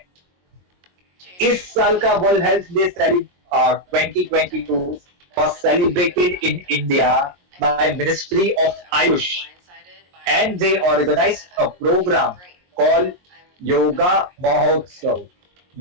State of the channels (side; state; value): left; late; 22 ms